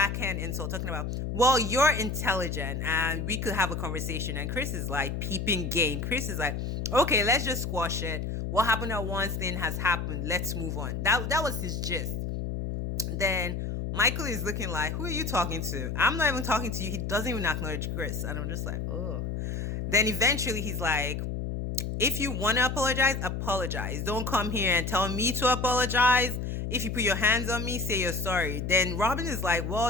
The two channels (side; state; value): left; noise; hum, 3 dB below the sound